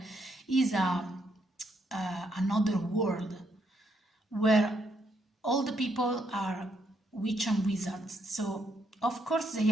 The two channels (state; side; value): normal; both; correlation 0.75